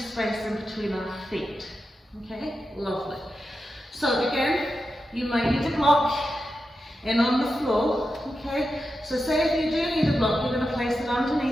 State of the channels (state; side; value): normal; both; correlation 0.90